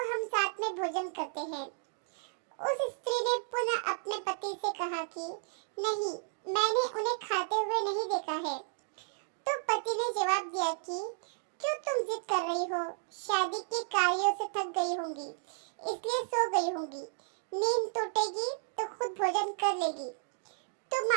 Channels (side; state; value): left; silent; digital silence